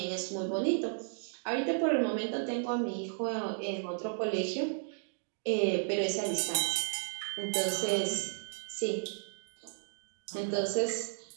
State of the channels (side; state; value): left; silent; digital silence